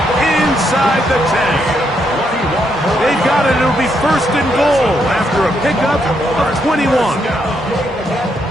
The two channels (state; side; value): normal; both; correlation 0.77